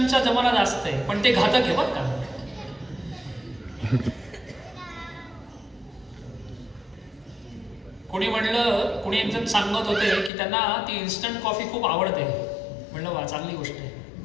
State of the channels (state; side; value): drops out; right; at 10.3 s